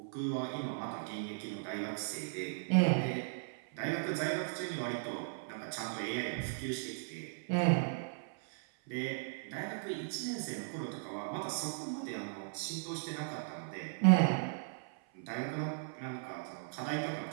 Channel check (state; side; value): silent; left; 53 dB below the other